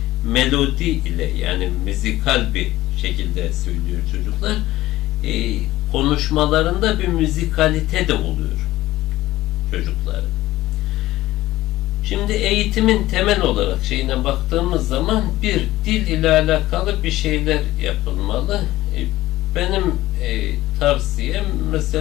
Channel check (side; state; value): right; quieter; 16.4 dB